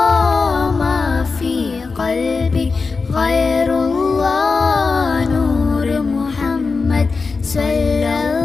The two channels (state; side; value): quieter; right; 4.4 dB